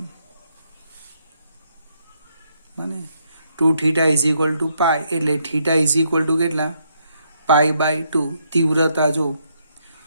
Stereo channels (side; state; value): both; inverted; correlation -0.75